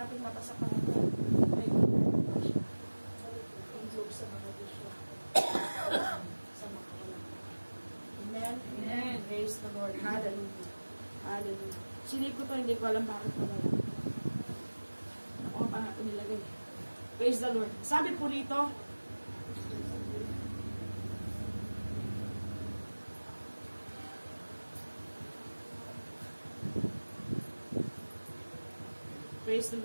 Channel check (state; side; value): inverted; both; correlation -1.00